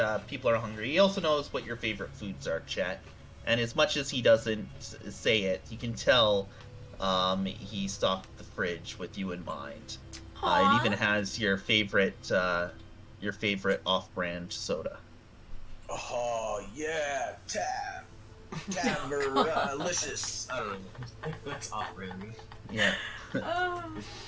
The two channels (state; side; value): identical; both; correlation 1.00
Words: people are hungry. He also knows what your favorite foods are, Chet. And as much as he doesn't say it, you can tell he stocked the fridge with you in mind. It even has your favorite off-brand soda. Oh, yeah, Tab-er-licious. I don't know. That's off-brand. Yeah.